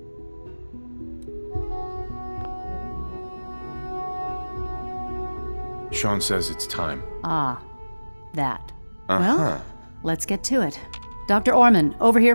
Sean says it's time. Ah, that. Well, let's get to it. Dr. Orman, over here,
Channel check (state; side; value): inverted; both; correlation -1.00